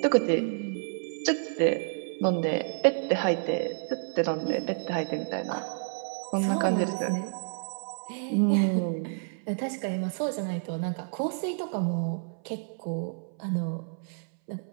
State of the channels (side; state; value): left; silent; 58 dB below the other